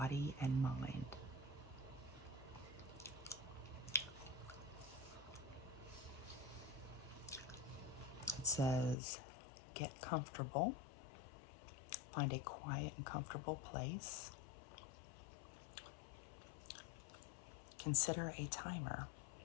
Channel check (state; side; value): drops out; right; at 9.0 s